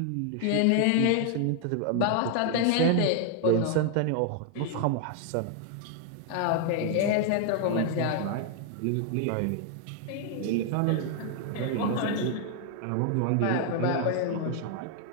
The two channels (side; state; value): both; different; correlation 0.00